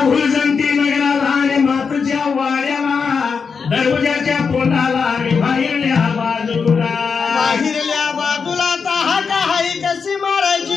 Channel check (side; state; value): right; quieter; 5.6 dB